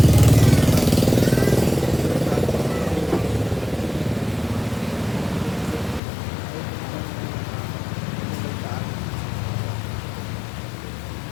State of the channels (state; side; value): drops out; right; at 6.0 s